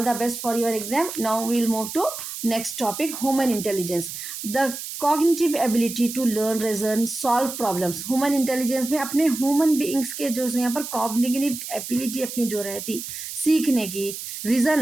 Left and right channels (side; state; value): right; noise; hiss, 8 dB below the sound